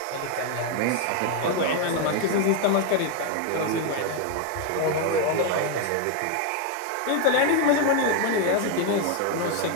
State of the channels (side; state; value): both; different; correlation 0.01